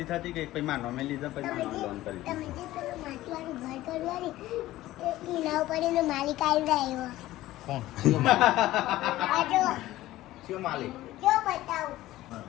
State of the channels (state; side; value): quieter; right; 15.9 dB